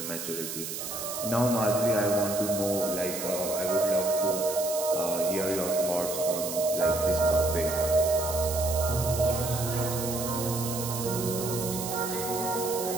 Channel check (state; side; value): noise; right; hiss, 6 dB below the sound